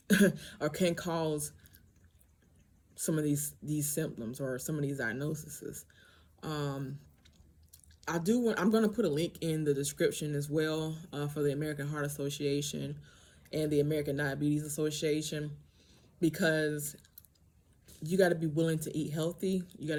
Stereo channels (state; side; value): identical; both; correlation 1.00